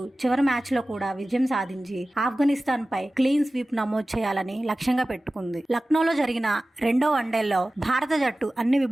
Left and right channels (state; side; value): normal; both; correlation 0.96